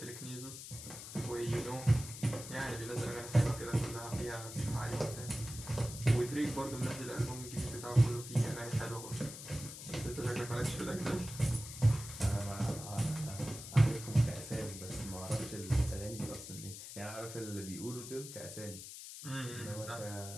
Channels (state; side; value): noise; left; hiss, 11 dB below the sound